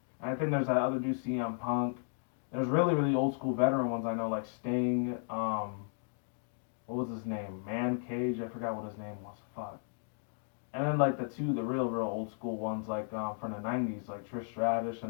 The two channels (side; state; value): right; silent; 55 dB below the other